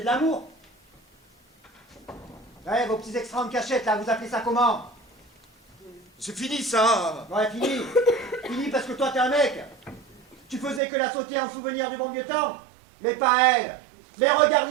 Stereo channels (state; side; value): drops out; left; at 10.8 s